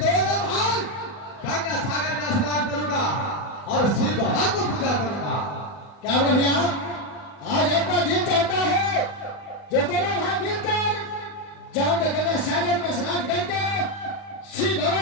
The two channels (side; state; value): right; late; 40 ms